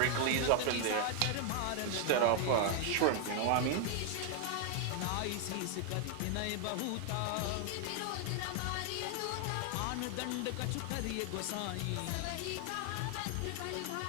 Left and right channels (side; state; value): both; different; correlation 0.00